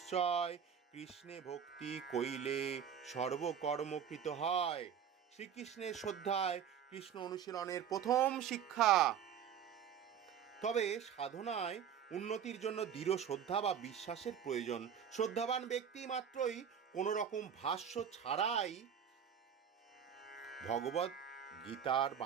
কৃষ্ণে ভক্তি কইলে সর্বকর্মকৃত হয়। শ্রীকৃষ্ণের শ্রদ্ধায় কৃষ্ণ অনুশীলনের প্রথম শিক্ষা। তবে সাধনায় উন্নতির জন্য দৃঢ় শ্রদ্ধা বা বিশ্বাসের প্রয়োজন। শ্রদ্ধাবান ব্যক্তি মাত্রই কোনো রকম ভাষ্য ছাড়াই ভগবত গীতার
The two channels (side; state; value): left; quieter; 8.3 dB